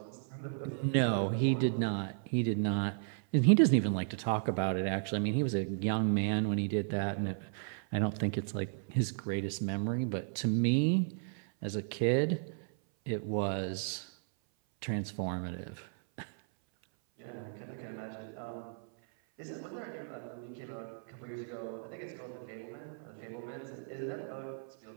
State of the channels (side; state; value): left; silent; 55 dB below the other